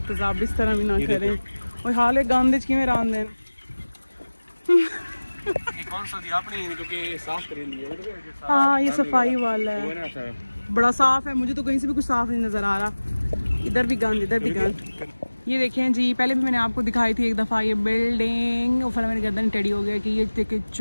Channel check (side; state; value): both; inverted; correlation -1.00